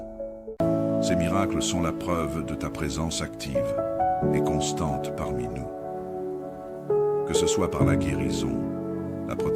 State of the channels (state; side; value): identical; both; correlation 1.00